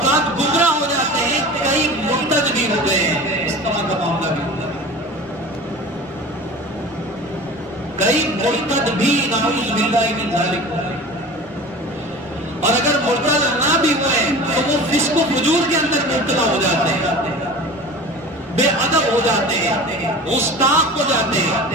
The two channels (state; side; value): normal; both; correlation 0.37